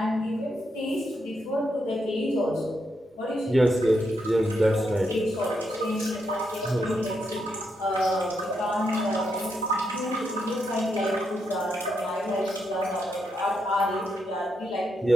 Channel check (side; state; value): both; normal; correlation 0.81